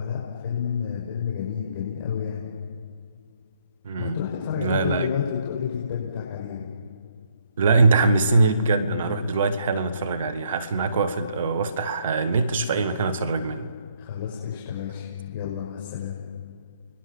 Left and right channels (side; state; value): both; inverted; correlation -0.69